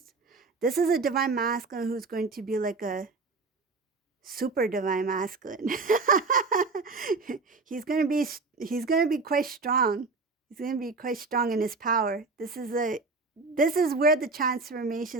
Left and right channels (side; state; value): left; quieter; 3.9 dB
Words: a divine masculine who's going to be like a super divine masculine. he's gonna be quite strong. He's gonna be quite strong in his power. This is where the